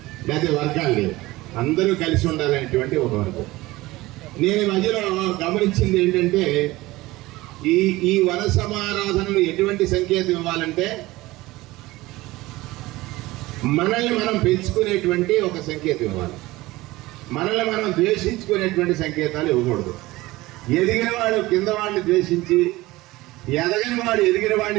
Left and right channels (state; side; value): quieter; left; 19.2 dB